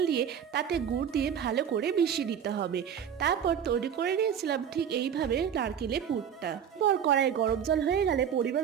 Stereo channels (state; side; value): quieter; left; 8.4 dB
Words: দিয়ে তাতে গুড় দিয়ে ভালো করে মিশিয়ে নিতে হবে। তারপর তৈরি করে নিয়েছিলাম ঠিক এইভাবে নারকেলের পুরটা। পর কড়াই গরম জল হয়ে গেলে পরিমাণ